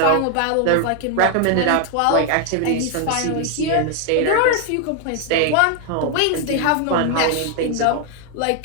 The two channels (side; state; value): both; different; correlation 0.00